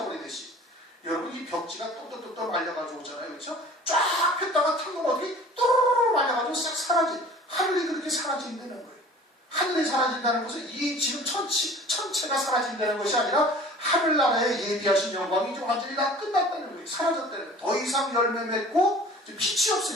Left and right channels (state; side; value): normal; both; correlation 0.46